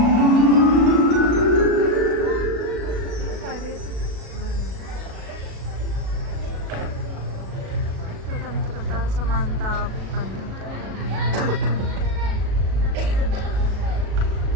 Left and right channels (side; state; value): left; late; 37 ms